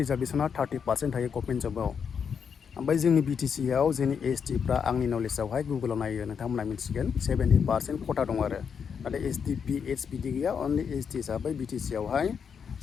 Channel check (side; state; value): right; quieter; 6.8 dB